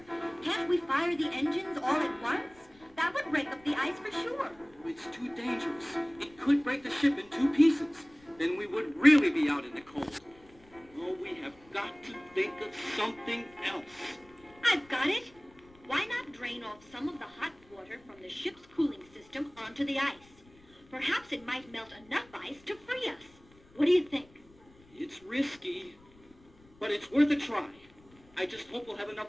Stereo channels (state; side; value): noise; left; rumble, 27 dB below the sound